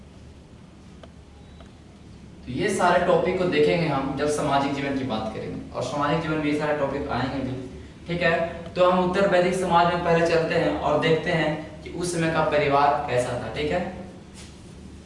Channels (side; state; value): both; identical; correlation 1.00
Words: तो ये सारे टॉपिक को देखेंगे हम जब सामाजिक जीवन की बात करेंगे, और सामाजिक जीवन में ये सारे टॉपिक आएंगे भी। ठीक है, तो हम उत्तर वैदिक समाज में पहले चलते हैं और देखते हैं कि उस समय का परिवार कैसा था। ठीक है,